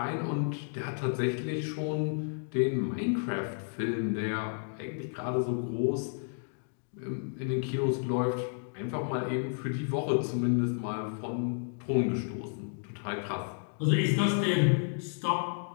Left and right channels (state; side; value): silent; right; digital silence